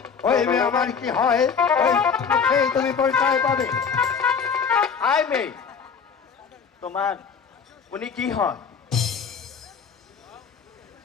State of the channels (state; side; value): quieter; right; 6.2 dB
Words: ওই মেয়ে আমার কি হয়, ওই মুখেই তুমি পরিচয় পাবে। আয় মেয়ে, তোমার উনি কি হয়?